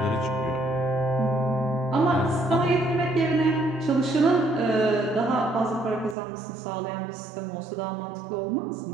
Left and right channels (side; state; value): left; drops out; at 6.2 s